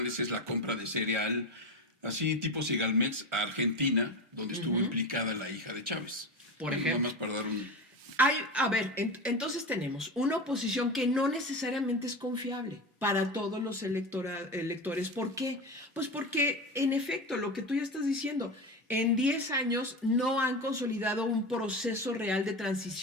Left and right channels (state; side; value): normal; both; correlation 0.23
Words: es la compra de cereal, así tipo Segalmex, a Argentina, donde estuvo implicada la hija de Chávez. Por ejemplo. Nada más para dar un... A ver, entonces tenemos una oposición que no necesariamente es confiable para todos los electores. ¿Por qué? Pues porque, en efecto, lo que tú ya estás diciendo, en 10 años no han consolidado un proceso real de